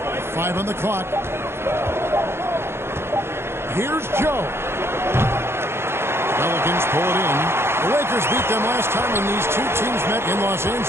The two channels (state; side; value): late; left; 0.12 ms